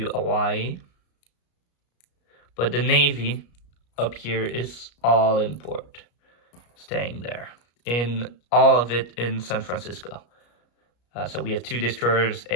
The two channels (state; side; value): late; right; 34 ms